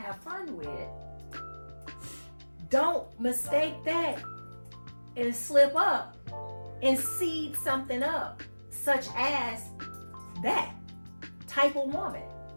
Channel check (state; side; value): inverted; both; correlation -1.00